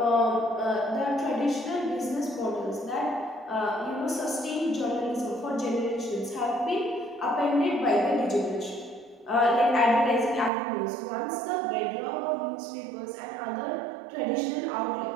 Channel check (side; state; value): left; drops out; at 10.5 s